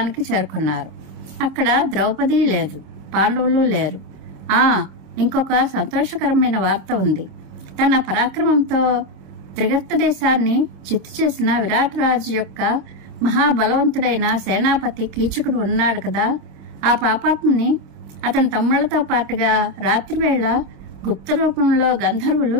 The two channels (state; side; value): late; left; 26 ms